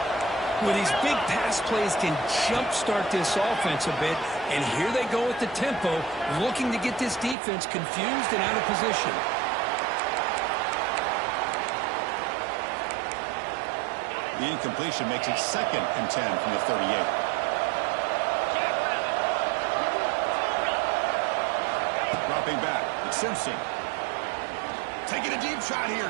Well, these big pass plays can jumpstart this offense a bit, and here they go with the tempo, looking to get this defense confused and out of position. The incompletion makes it 2nd and 10 from the 38. Dropping back, it's Simpson. Taking a deep shot here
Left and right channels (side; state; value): left; drops out; at 7.4 s